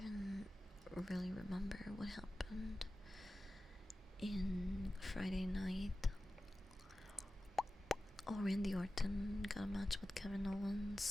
really remember what happened in Friday night. Oh, Randy Orton got a match with Kevin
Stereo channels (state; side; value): normal; both; correlation 0.94